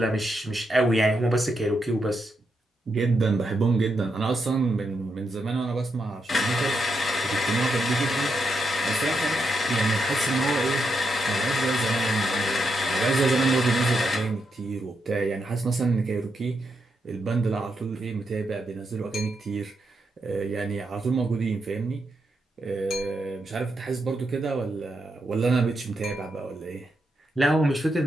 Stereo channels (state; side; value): normal; both; correlation 0.83